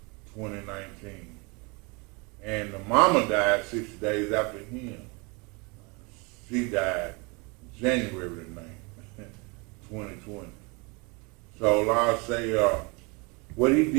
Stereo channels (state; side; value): quieter; left; 29.3 dB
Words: 2019. And the mama died 6 days after him. She died January the 9th, 2020. So like I say, what he